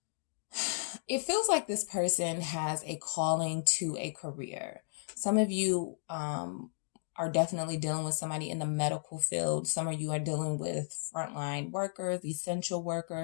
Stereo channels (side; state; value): right; silent; digital silence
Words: It feels like this person has a calling to a career. Some of you are definitely dealing with somebody in the medical field. Some of you are dealing with frontline workers, essential